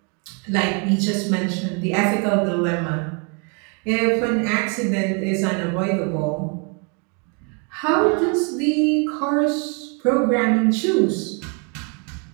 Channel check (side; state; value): left; quieter; 35.6 dB